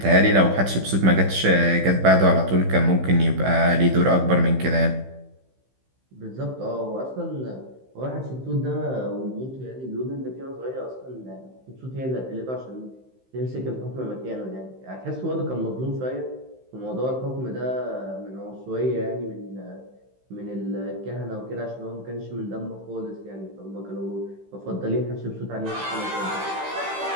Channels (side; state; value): left; late; 15 ms